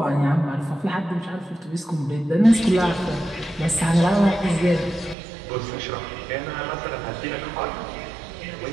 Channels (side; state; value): left; drops out; at 5.2 s